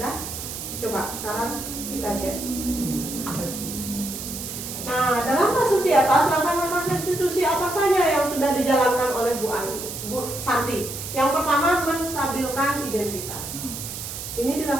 Coba sekarang kita cek. Nah, dalam kasus di atas, langkah-langkah restitusi apa saja yang sudah dijalankan oleh Bu Santi? Yang pertama, menstabilkan identitas. Ini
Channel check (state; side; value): noise; right; hiss, 8 dB below the sound